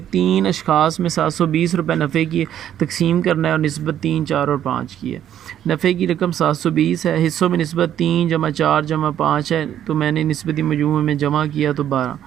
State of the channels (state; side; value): quieter; left; 10.7 dB